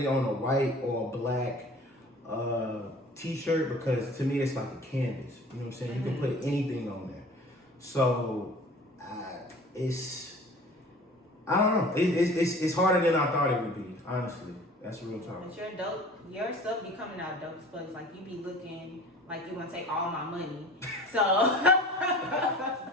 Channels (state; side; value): normal; both; correlation 0.44